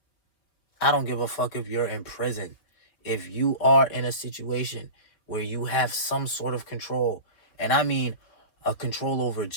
I don't give a fuck if you're in prison. If you are in a situation where you have some sort of control, and I mean a control over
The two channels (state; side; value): late; right; 4.7 ms